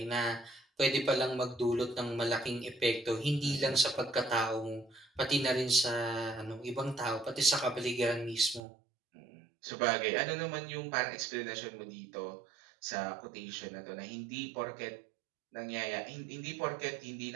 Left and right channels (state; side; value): drops out; left; at 8.6 s